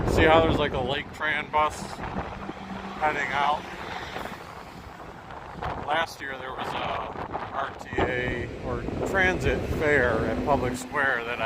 see how there's like a Lake Tran bus heading out? Last year there was a RTA or transit fair at Public Square that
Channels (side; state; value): both; identical; correlation 1.00